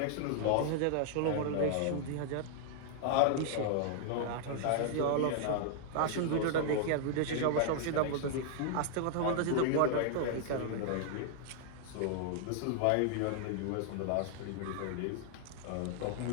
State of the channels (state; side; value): different; both; correlation -0.01